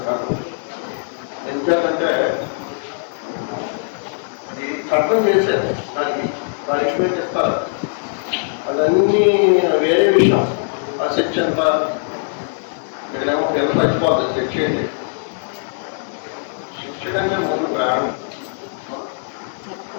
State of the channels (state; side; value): silent; right; digital silence